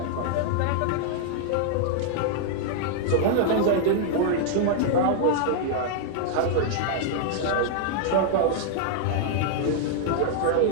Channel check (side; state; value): both; different; correlation -0.01